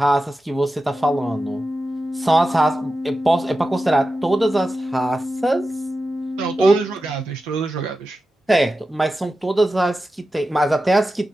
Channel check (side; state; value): both; normal; correlation 0.92